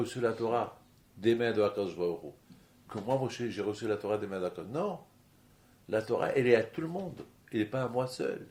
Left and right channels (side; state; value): both; identical; correlation 1.00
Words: la Torah des mains de HaKadosh Baruch Hu? Que moi, Moshe, j'ai reçu la Torah des mains de HaKadosh. Non, la Torah, elle est à tout le monde, elle n'est pas à moi seul.